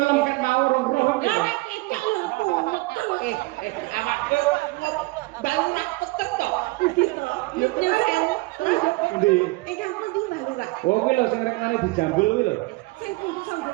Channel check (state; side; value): quieter; left; 23.3 dB